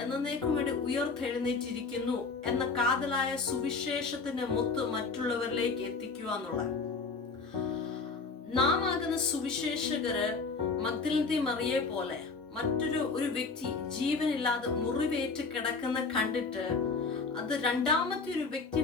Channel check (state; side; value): quieter; right; 4.3 dB